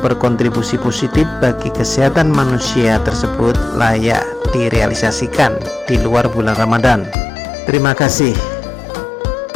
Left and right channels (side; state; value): right; drops out; at 7.2 s